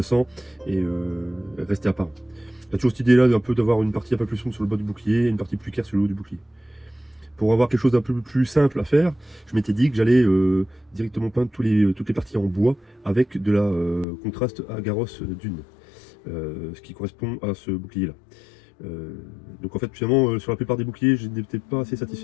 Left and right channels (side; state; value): right; drops out; at 14.1 s